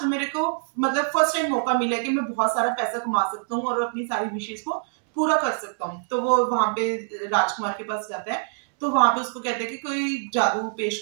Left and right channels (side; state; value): left; silent; digital silence